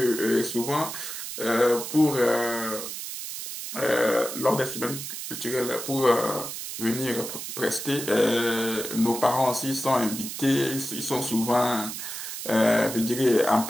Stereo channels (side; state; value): right; noise; hiss, 7 dB below the sound